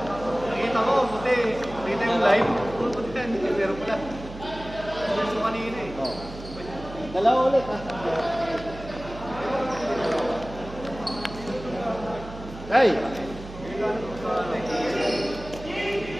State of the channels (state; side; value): noise; right; hum, 13 dB below the sound